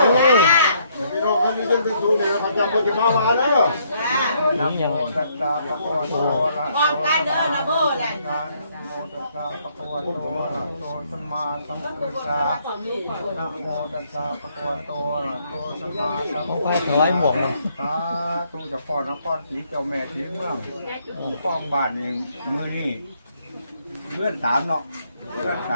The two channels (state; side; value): inverted; both; correlation -0.70